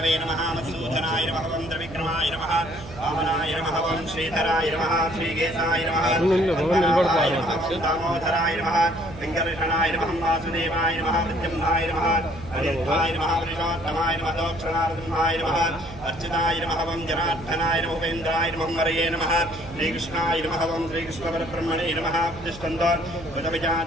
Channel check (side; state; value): right; noise; hum, 16 dB below the sound